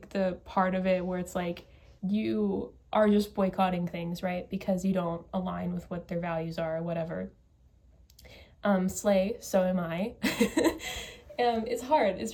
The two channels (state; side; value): identical; both; correlation 1.00